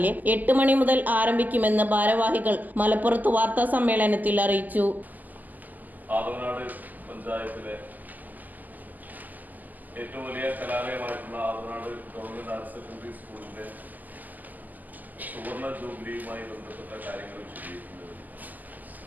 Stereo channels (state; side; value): late; left; 0.083 ms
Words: 8 മണി മുതൽ ആരംഭിക്കുമെന്ന് ഭാരവാഹികൾ മലപ്പുറത്ത് വാർത്താ സമ്മേളനത്തിൽ അറിയിച്ചു. ആദവനാട് പഞ്ചായത്തിലെ ഏറ്റവും വലിയ കലാലയമായിട്ടുള്ള ആദവനാട് ഗവൺമെന്റ് ഹയർ സെക്കൻഡറി സ്കൂളിന്റെ സുവർണ ജൂബിലിയുമായി ബന്ധപ്പെട്ട കാര്യങ്ങൾ വിശദീകരിക്കുന്നത്